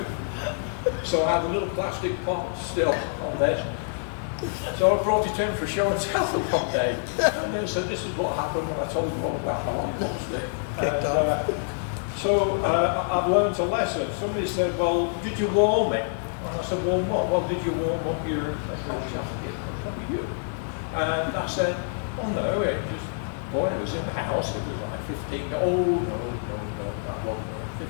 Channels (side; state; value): right; silent; digital silence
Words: So I had a little plastic pot still on this. So I brought it in for show and tell one day. And they said, this is what happened when I told you all about my lollipop stick. So I've learned a lesson. Somebody said, well, did you warm it? And I said, warm what? Well, did you warm up your jacket? What you? And I said, oh no, it just, boy, it was in the house. It was like 15, no, that wasn't